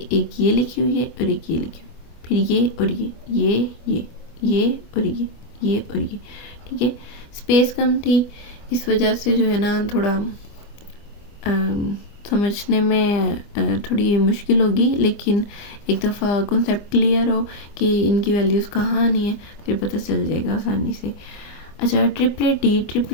ये लिखी हुई है और एक ये लिखी हुई, फिर ये और ये और ये और ये, ठीक है। स्पेस कम थी, इस वजह से जो है ना थोड़ा समझने में थोड़ी मुश्किल होगी, लेकिन एक दफ़ा कॉन्सेप्ट क्लियर हो कि इनकी वैल्यूज़ कहाँ आनी है, फिर पता चल जाएगा आसानी से। अच्छा, ट्रिपलेट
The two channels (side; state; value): right; late; 24 ms